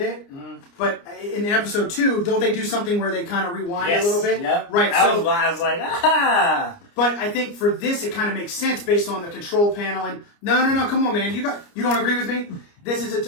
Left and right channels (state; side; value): late; right; 29 ms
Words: it. Mm-hmm. But in episode 2, don't they do something where they kind of rewind a little bit? Yep. Right. I was like, ah. But I think for this, it kind of makes sense based on the control panel. And no, come on, man, you don't agree with me? This